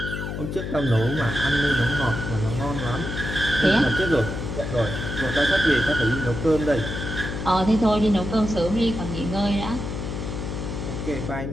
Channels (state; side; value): noise; left; hum, 5 dB below the sound